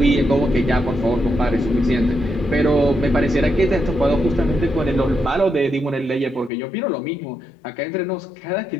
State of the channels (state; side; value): drops out; right; at 6.5 s